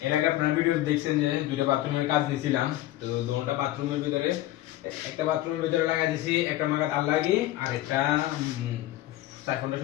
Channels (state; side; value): quieter; right; 15.3 dB